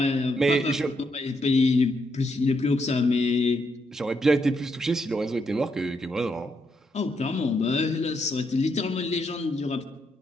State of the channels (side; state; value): both; normal; correlation 0.78